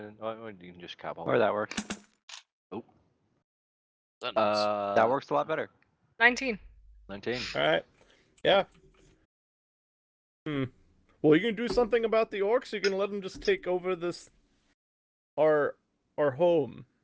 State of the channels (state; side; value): identical; both; correlation 1.00